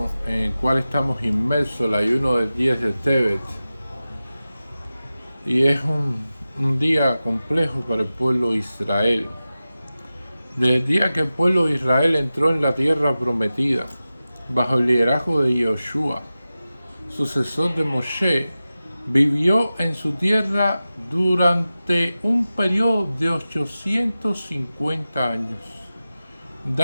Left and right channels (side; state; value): both; inverted; correlation -0.95